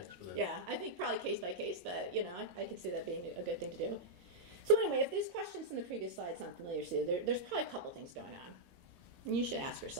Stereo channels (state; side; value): late; left; 22 ms